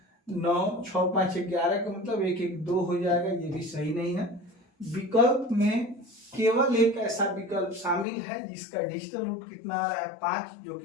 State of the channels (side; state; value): right; drops out; at 8.1 s